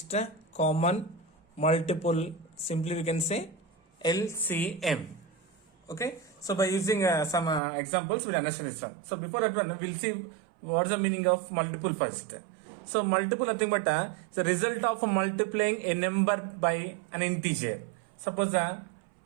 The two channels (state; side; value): drops out; left; at 7.6 s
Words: common multiple, simply we can say LCM. Okay, so by using some examples we'll understand this one. So before that one we'll see what's the meaning of multiple first. So multiple nothing but it's the result of multiplying a number by an integer. Suppose